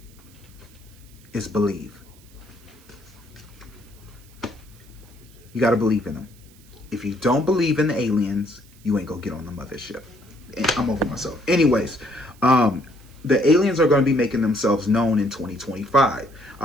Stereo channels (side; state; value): right; noise; hiss, 27 dB below the sound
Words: It's believe. You got to believe in them. If you don't believe in the aliens, you ain't gonna get on the mothership. I'm over myself. Anyways, the aliens are going to be making themselves known in 2025.